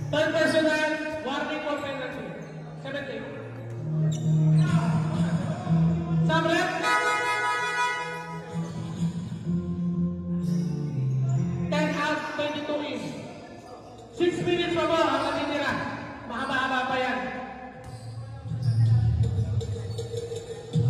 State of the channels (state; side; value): identical; both; correlation 1.00